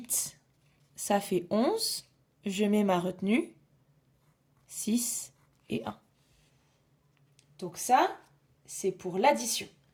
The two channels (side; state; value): both; identical; correlation 1.00